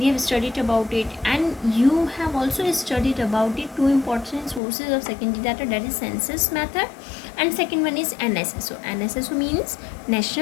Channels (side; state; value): right; drops out; at 4.6 s